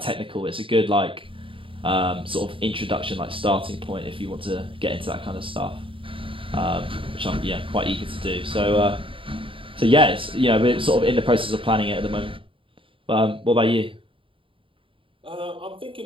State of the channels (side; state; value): left; late; 0.25 ms